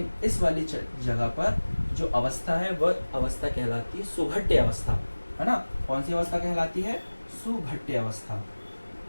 इस वाली जगह पर जो अवस्था है वह अवस्था कहलाती है सुघट्य अवस्था, है ना। कौन सी अवस्था कहलाती है, सुघट्य अवस्था।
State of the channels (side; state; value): both; inverted; correlation -1.00